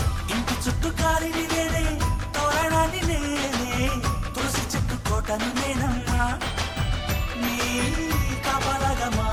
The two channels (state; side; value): identical; both; correlation 1.00